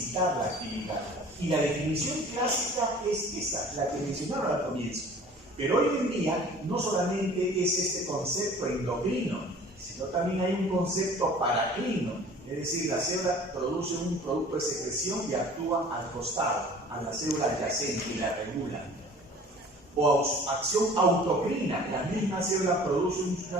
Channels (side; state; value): both; normal; correlation 0.47